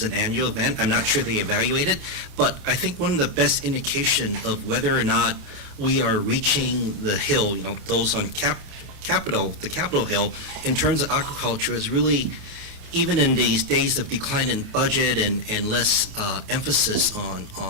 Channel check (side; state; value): left; late; 28 ms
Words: annual event. I'm not sure they evaluate it, but I think one of the best indication of whether or not we are reaching the hill, those on the Capitol Hill, in terms of aquaculture is really, even in these days of decline in budget and less emphasis